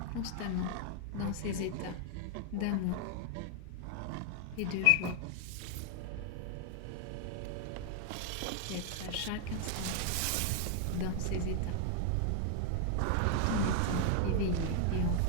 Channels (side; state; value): both; different; correlation 0.00